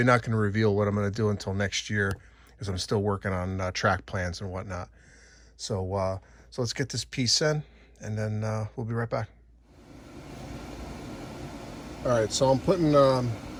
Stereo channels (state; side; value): identical; both; correlation 1.00